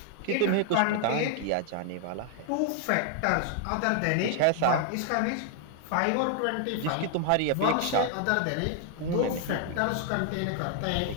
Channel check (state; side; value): different; both; correlation 0.00